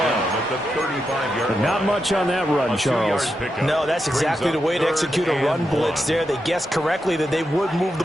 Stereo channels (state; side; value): normal; both; correlation 0.86